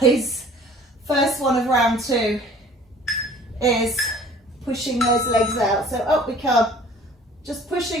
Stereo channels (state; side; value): normal; both; correlation 0.50